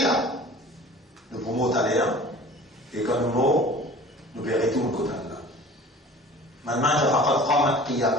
là. Nous pouvons aller, et quand nous mourons, nous verrons tout le côté là. Maintenant,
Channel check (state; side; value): normal; both; correlation 0.44